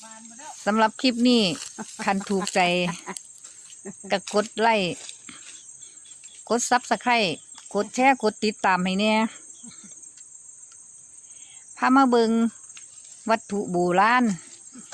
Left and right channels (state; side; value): identical; both; correlation 1.00